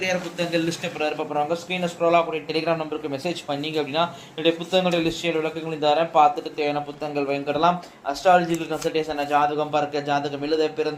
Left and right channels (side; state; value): both; identical; correlation 1.00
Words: புத்தகங்கள் லிஸ்ட்டை போகிறாங்க. ஸ்க்ரீனில் ஸ்க்ரோலாக கூடிய டெலிகிராம் நம்பருக்கு மெசேஜ் பண்ணிங்க அப்படின்னா என்னுடைய புத்தகங்களுடைய லிஸ்டில் விளக்கங்கள் தரேன். பார்த்துட்டு தேவையான புத்தகங்கள் வாங்கிடலாம். அஸ்ட்ராலஜிக்கல் கன்சல்டேஷன், ஜாதகம் பார்க்க, ஜாதகம் எழுத,